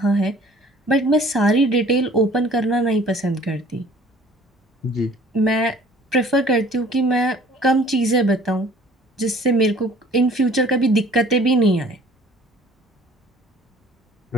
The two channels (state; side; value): normal; both; correlation 0.52